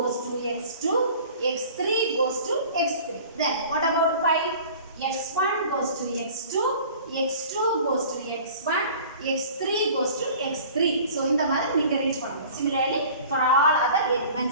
to X2, X3 goes to X3. Then what about Pi? X1 goes to X2, X2 goes to X1, X3 goes to X3. So இந்த மாதிரி நீங்க read பண்ணணும். Similarly for all other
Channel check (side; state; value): both; inverted; correlation -0.45